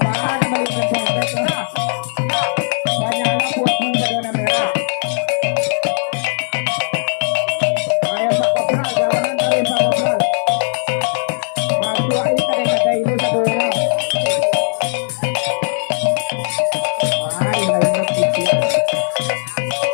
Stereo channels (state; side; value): silent; right; 67 dB below the other